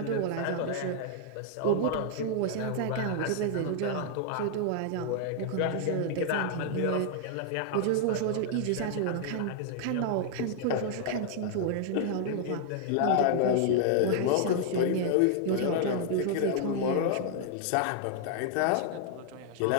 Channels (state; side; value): different; both; correlation 0.00